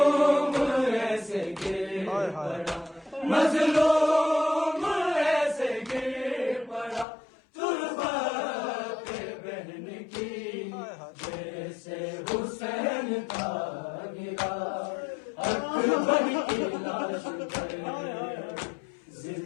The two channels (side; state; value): right; drops out; at 7.1 s